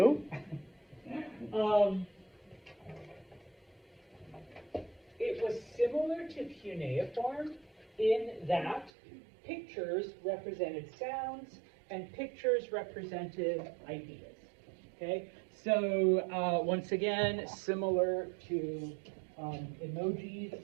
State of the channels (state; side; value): drops out; left; at 8.9 s